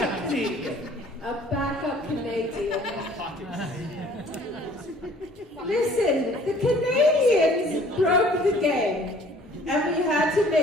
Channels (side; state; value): both; normal; correlation 0.54